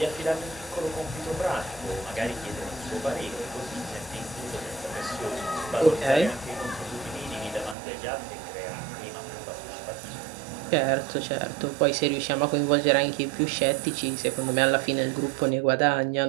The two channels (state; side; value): drops out; left; at 7.8 s